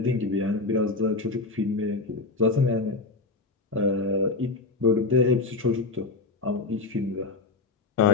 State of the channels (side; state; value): right; quieter; 3.6 dB